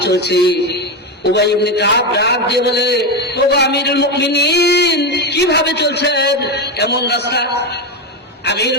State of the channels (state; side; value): normal; both; correlation 0.13